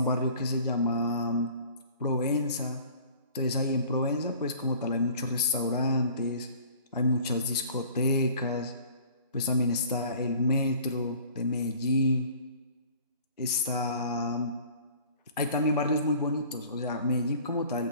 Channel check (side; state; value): both; inverted; correlation -0.49